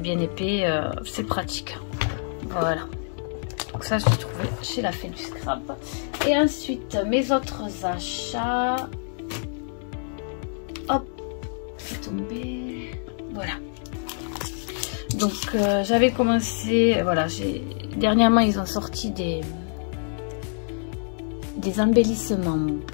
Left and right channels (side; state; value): right; silent; digital silence